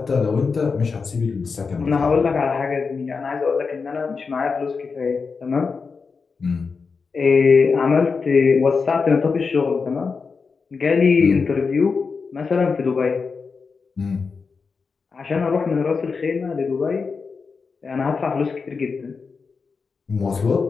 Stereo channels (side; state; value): right; quieter; 5.0 dB